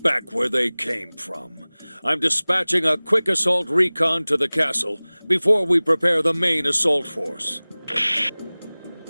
where they came from. I'm dispatching a quick assault recon to the castle before we prepare the main assault force.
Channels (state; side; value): inverted; both; correlation -1.00